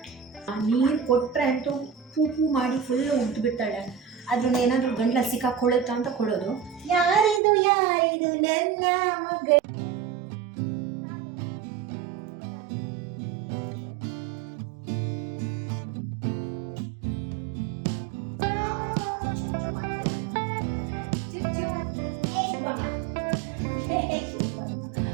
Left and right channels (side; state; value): left; drops out; at 7.4 s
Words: ನೀರು ಕೊಟ್ಟರೆ ಅಂತೂ ಪೂ ಮಾಡಿ ಫುಲ್ಲು ಉದ್ಬಿಡ್ತಾಳೆ. ಅದನ್ನ ಏನಾದರೂ ಗಂಟ್ಲ ಸಿಕ್ಕಾಕೊಳ್ಳುತ್ತಾ ಅಂತ ಕೊಡೋದು. ಯಾರಿದು ನನ್ನ ಮಗ.